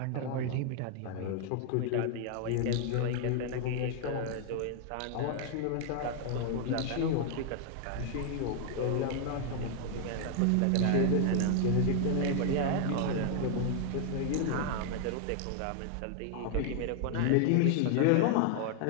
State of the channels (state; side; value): different; both; correlation 0.00